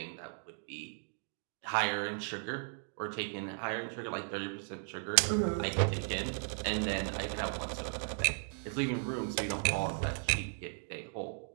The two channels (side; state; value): left; silent; 54 dB below the other